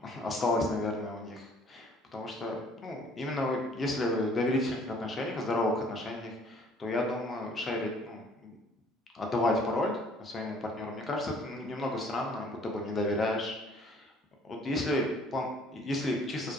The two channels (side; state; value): both; normal; correlation 0.57